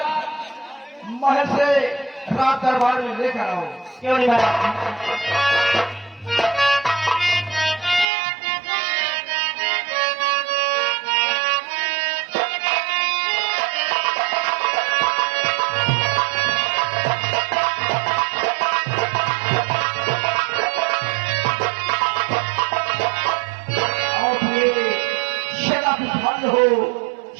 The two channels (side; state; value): left; drops out; at 8.1 s